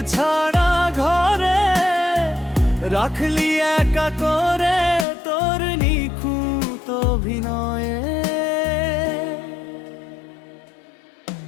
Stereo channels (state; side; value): drops out; right; at 5.1 s